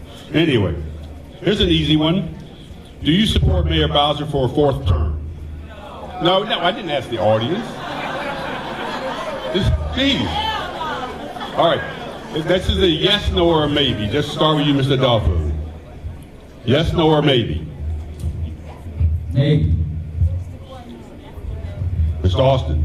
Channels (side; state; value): both; identical; correlation 1.00